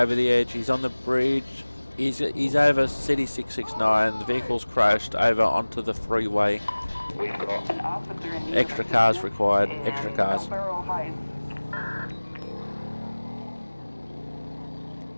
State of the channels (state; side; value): inverted; both; correlation -1.00